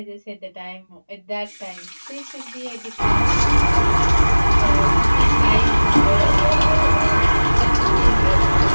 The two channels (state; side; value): inverted; both; correlation -1.00